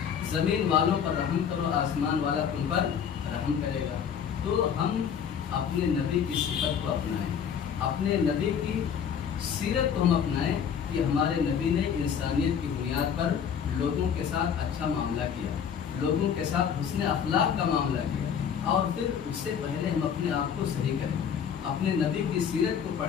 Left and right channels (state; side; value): quieter; right; 7.8 dB